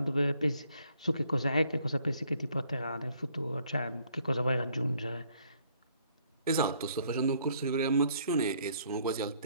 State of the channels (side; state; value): both; inverted; correlation -0.66